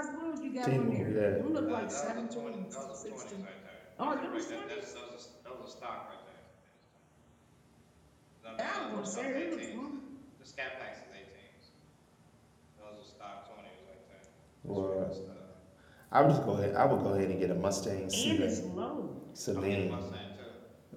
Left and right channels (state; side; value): identical; both; correlation 1.00